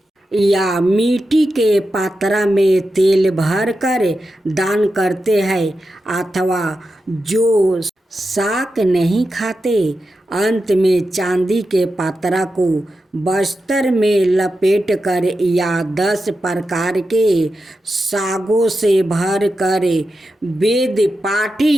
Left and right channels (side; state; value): both; normal; correlation 0.90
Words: या मिट्टी के पात्रा में तेल भरकर दान करते हैं, अथवा जो शाक नहीं खाते, अंत में चांदी के पात्रा को बस्तर में लपेट कर या 10 प्रकार के सागों से भर कर वेद